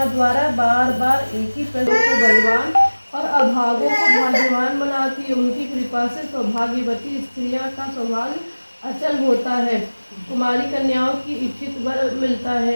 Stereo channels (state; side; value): inverted; both; correlation -1.00